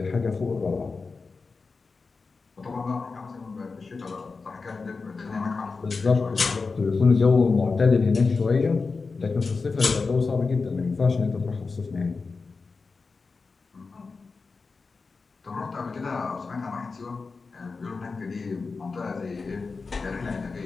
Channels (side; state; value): right; quieter; 4.4 dB